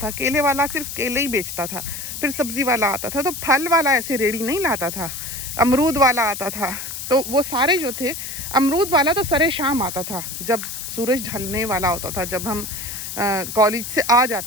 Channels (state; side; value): noise; left; hiss, 7 dB below the sound